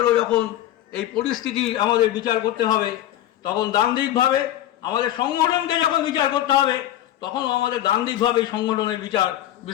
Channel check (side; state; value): right; quieter; 12.9 dB